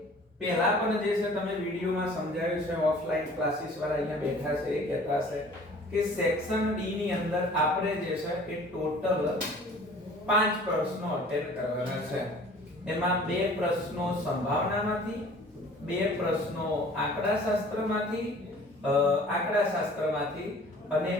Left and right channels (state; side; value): normal; both; correlation 0.49